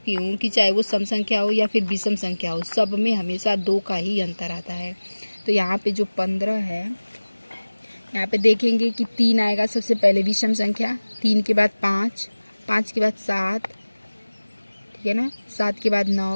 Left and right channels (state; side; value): inverted; both; correlation -1.00